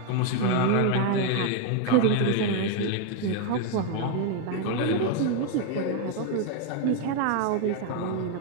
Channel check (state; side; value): different; both; correlation 0.01